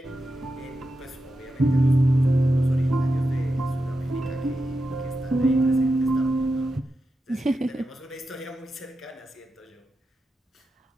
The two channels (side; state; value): both; normal; correlation 0.89